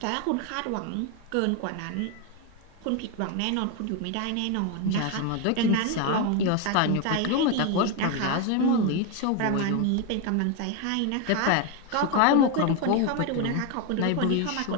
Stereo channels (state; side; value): different; both; correlation 0.02